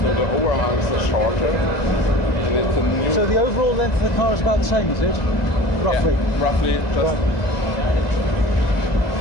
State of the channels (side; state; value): right; late; 2.0 ms